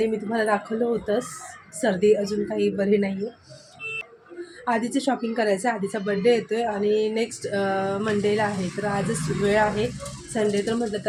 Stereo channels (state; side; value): identical; both; correlation 1.00